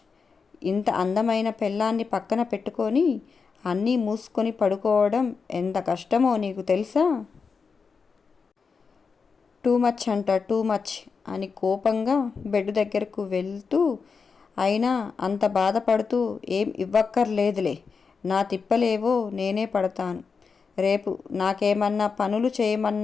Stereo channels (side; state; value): right; quieter; 5.3 dB